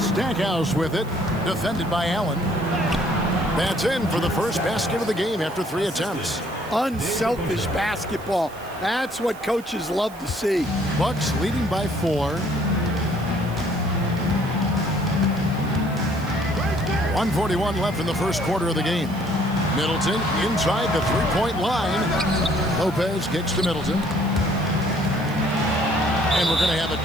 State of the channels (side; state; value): right; noise; hiss, 22 dB below the sound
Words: with it. Defended by Allen. That's in for the first basket of the game after 3 attempts. Unselfish basketball. That's what coaches love to see. Bucks leading by 4. 1:41 left in the first quarter of the game. Middleton inside the 3-point line. Lopez kicks to Middleton. And we're going to have a